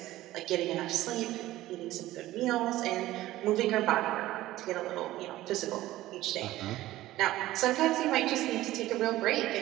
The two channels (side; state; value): left; quieter; 15.9 dB